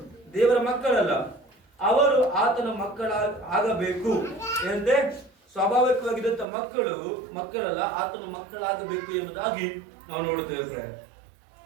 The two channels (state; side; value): drops out; left; at 6.5 s